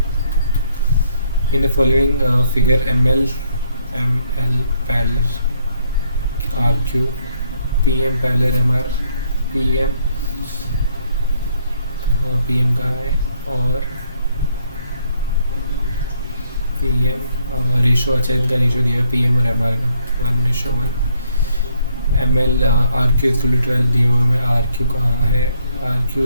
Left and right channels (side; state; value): both; inverted; correlation -0.71